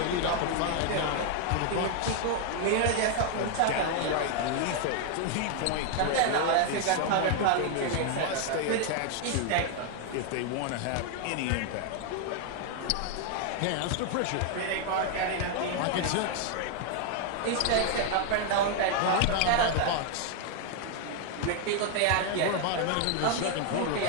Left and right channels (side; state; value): both; different; correlation 0.00